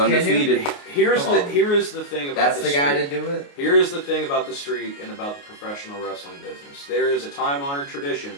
Here is the thing about that's the guy to do it. Here is the thing about the streak and about the professional wrestling business. There is a time-honored tradition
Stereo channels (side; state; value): right; late; 29 ms